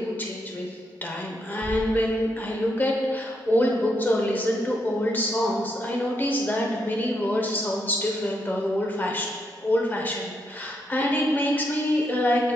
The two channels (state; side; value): normal; both; correlation 0.78